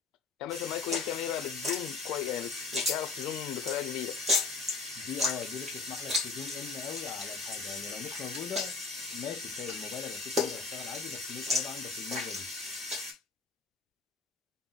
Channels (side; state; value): right; quieter; 4.1 dB